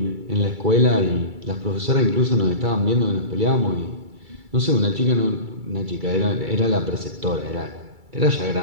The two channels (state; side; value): late; left; 2.3 ms